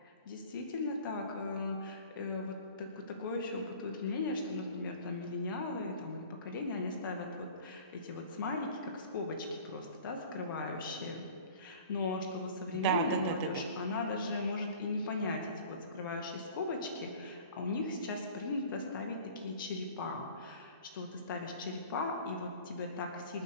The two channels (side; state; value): both; inverted; correlation -0.44